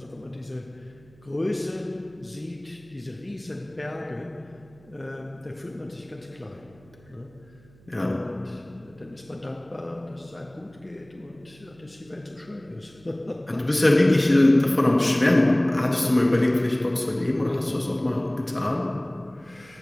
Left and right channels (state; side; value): noise; right; hum, 27 dB below the sound